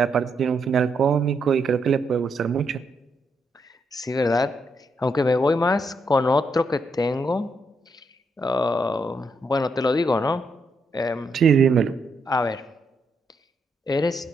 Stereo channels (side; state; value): both; normal; correlation 0.79